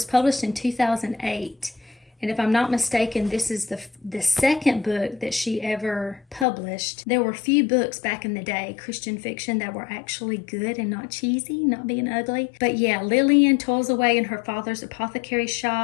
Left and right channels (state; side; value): drops out; right; at 6.5 s